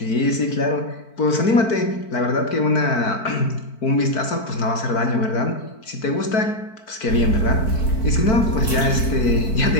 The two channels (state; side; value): late; right; 4.5 ms